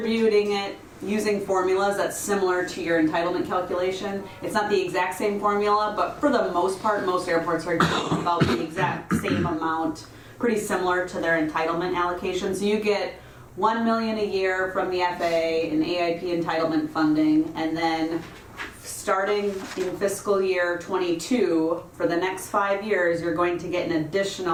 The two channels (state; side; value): identical; both; correlation 1.00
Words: it using formulas that's similar to your entitlement calculation. It's not the exact same formula, but for the most part, most airports are getting about the exact same amount, pretty similar to their entitlement allocation. So you get $1 million a year from the FAA and AIP entitlement funding, and then starting in fiscal year 22, for the next 5 years, you're going to get an